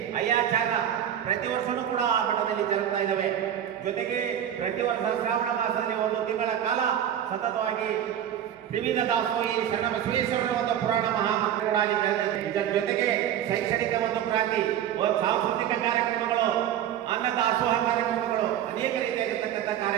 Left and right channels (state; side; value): quieter; left; 10.2 dB